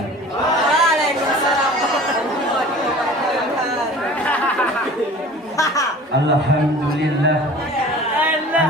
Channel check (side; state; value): both; normal; correlation 0.43